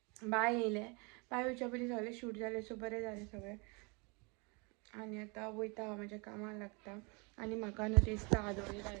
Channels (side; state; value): left; quieter; 30.5 dB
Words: बाय येयले बाय येवच्या पयलीं सगळें शूट जालें सो बरें जालें सगळें आनी आतां वयता हांव म्हाज्या कामाक लागता आनी म्हाका न्हू दिसता आदोळी